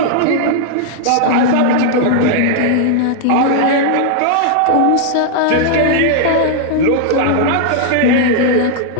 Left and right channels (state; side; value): different; both; correlation -0.01